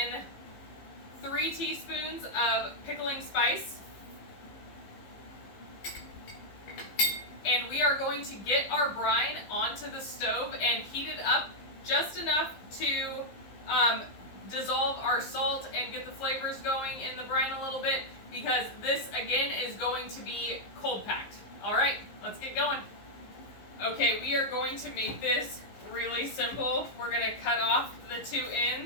3 teaspoons of pickling spice. And we are going to get our brine onto the stove and heat it up just enough to dissolve our salt and get the flavors going in the brine a little bit, because this again is going to be cold packed. All right, let's get going. Okay, we are going to make this really simple. We're going to cut off the 2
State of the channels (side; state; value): right; late; 15 ms